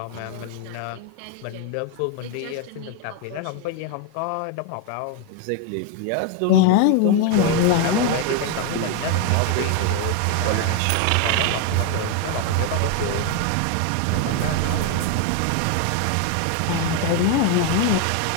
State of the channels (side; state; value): both; different; correlation 0.01